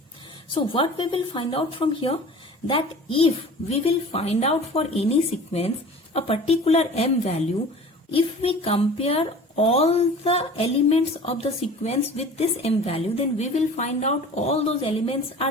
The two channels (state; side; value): normal; both; correlation 0.41